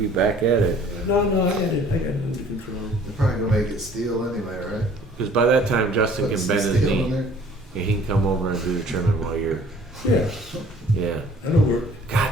back at it. No, I got it under control. They're probably gonna make it steel anyway, right? Because by that time, Justin Put can some bend his steel knee. in there. And he can come over and do the trimming while you're Yeah. Yeah. That'll work. God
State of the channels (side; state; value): both; normal; correlation 0.53